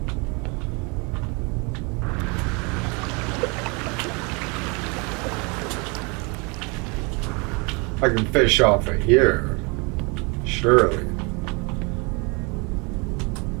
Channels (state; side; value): quieter; left; 30.5 dB